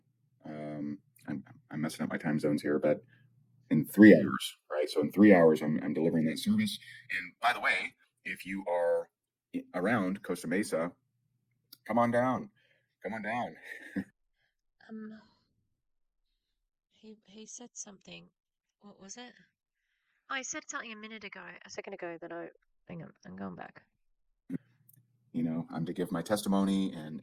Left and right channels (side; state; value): both; identical; correlation 1.00